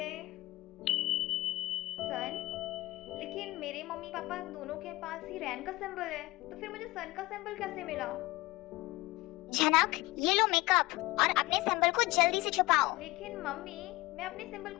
सन, लेकिन मेरे मम्मी पापा दोनों के पास ही रैन का सिंबल है, तो फिर मुझे सन का सिंबल कैसे मिला? झनक, ये लो मेकअप और अपने सिंबल को जल्दी से छुपाओ। लेकिन मम्मी, मैं अपने सिंबल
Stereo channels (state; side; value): quieter; right; 20.4 dB